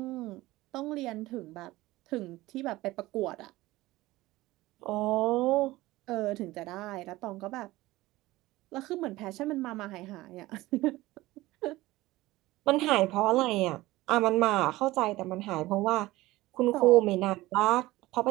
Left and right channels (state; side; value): quieter; left; 18.3 dB